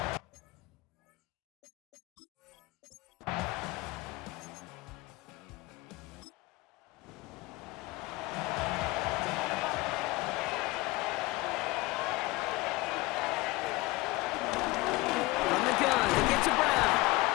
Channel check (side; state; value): right; quieter; 21.4 dB